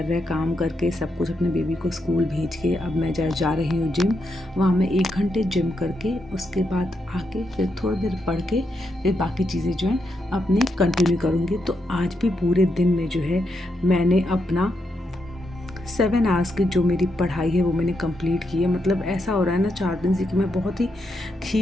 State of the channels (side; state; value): both; normal; correlation 0.82